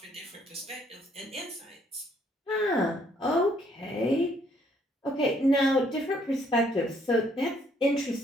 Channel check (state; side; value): normal; both; correlation 0.67